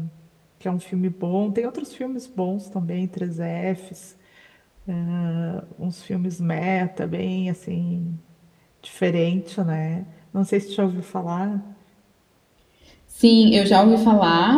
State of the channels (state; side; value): identical; both; correlation 1.00